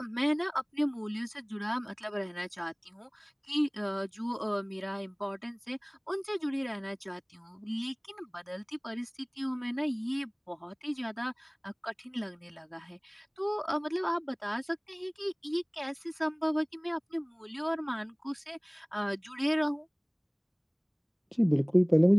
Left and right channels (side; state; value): both; identical; correlation 1.00